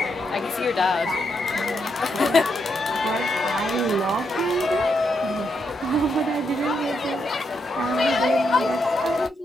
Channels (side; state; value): both; normal; correlation 0.80